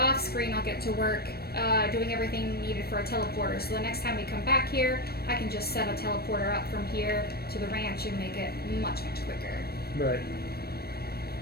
screen, I'll get to work doing everything needed for a teleporter. So the next time we come back here, I can just set a teleporter up from here to the ranch and make it much, much quicker. Right.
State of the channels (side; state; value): right; late; 0.46 ms